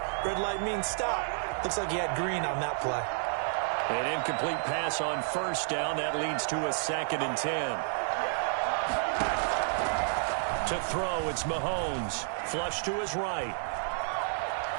red light means stop. Looks like he had green on that play. An incomplete pass on first down. That leads to a 2nd and 10. To throw, it's Mahomes. Flush to his right.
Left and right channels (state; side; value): silent; left; digital silence